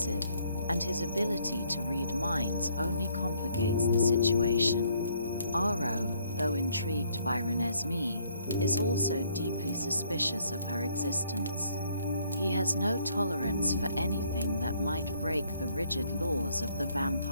and his ability to read minds only complicates the situation. Aro, though intrigued by Renesmee, is also deeply suspicious of her existence. He has no tolerance for anything that might break the rigid laws of the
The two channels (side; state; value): both; inverted; correlation -0.66